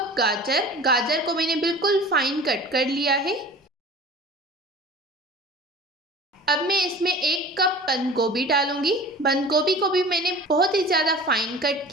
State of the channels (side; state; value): both; normal; correlation 0.41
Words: गाजर। गाजर को मैंने बिल्कुल फाइन कट कर लिया है। अब मैं इसमें 1 कप बंद गोभी डालूंगी। बंद गोभी को भी मैंने बहुत ही ज़्यादा फाइन कट